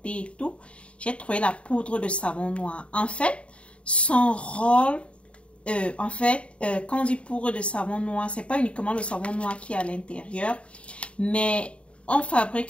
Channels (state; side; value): late; right; 0.060 ms